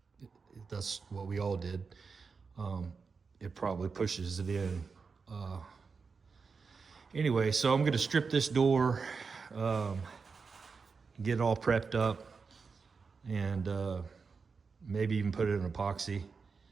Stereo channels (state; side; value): quieter; left; 5.0 dB